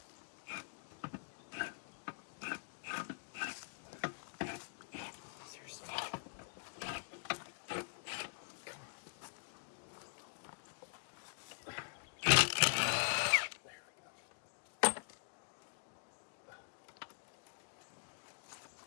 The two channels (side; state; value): right; silent; digital silence